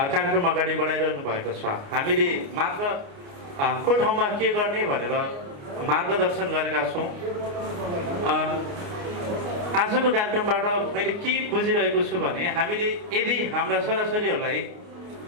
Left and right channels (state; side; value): late; left; 29 ms